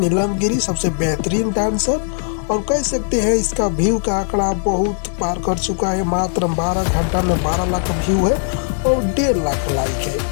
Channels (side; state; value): right; silent; digital silence